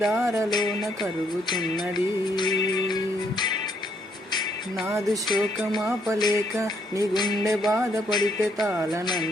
కరుగుతున్నది. నాదు శోకమాపలేక నీ గుండె బాధపడితే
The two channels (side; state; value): both; normal; correlation 0.71